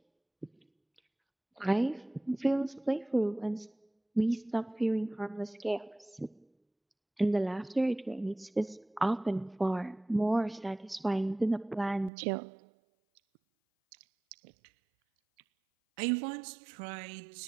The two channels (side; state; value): left; drops out; at 12.1 s